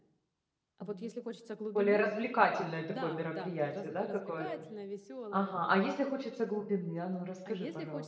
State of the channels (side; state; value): both; identical; correlation 1.00